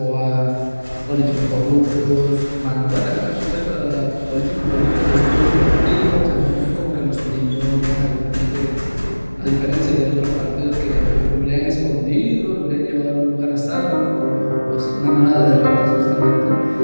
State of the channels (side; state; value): both; inverted; correlation -1.00